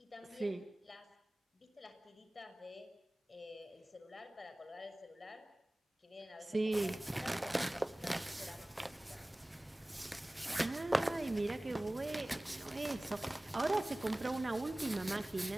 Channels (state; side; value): normal; both; correlation 0.98